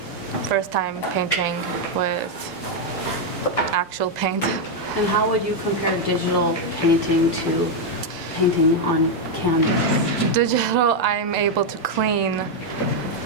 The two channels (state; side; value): normal; both; correlation 0.01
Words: first time painting with actual paint. And how would you compare digital painting to painting on canvas? Digital, I'm able to clean,